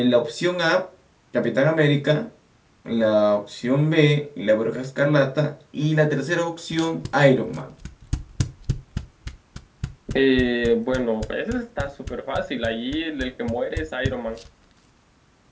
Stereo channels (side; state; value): both; identical; correlation 1.00